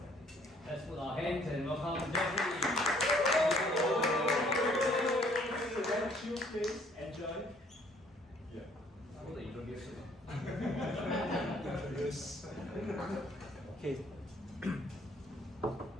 Let's put our hands and welcome Jeffrey. Chill, please. Enjoy. Yeah. How the introduction? Yes. Okay.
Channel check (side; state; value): both; normal; correlation 0.60